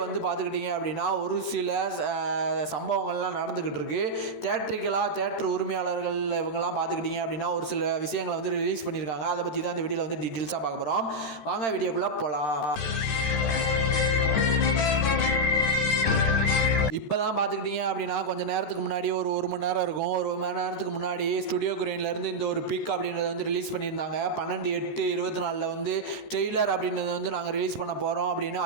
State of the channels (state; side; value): late; right; 13 ms